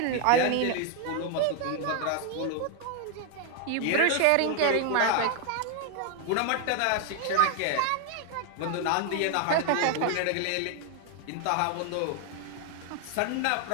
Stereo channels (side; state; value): both; different; correlation 0.00